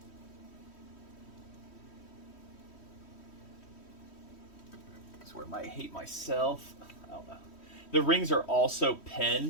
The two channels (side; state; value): right; late; 3.1 ms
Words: This is where I might hate myself. I don't know. The rings are also